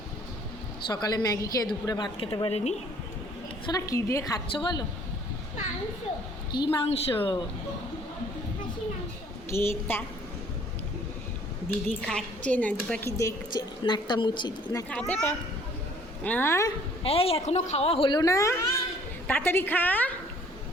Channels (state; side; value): normal; both; correlation 0.58